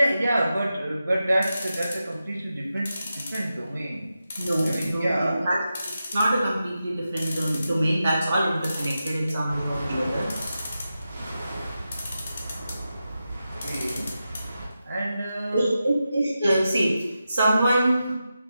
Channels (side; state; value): both; inverted; correlation -0.90